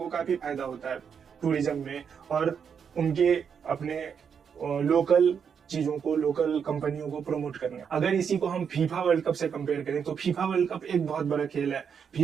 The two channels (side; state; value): left; quieter; 7.0 dB